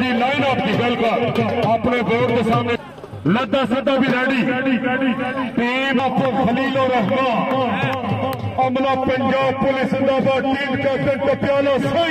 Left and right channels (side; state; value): both; identical; correlation 1.00